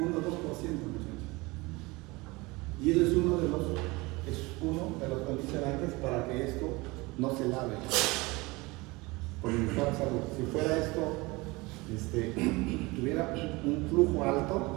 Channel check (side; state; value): left; quieter; 23.5 dB